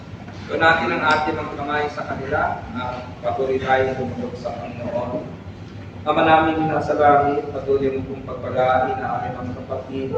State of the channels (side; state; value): both; identical; correlation 1.00